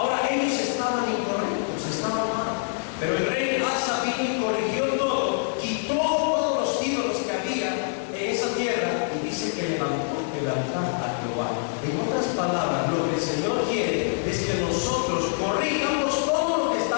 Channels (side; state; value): right; silent; 58 dB below the other